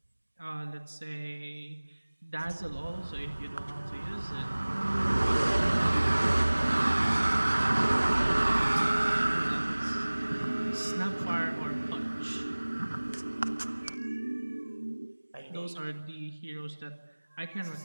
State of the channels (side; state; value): both; inverted; correlation -1.00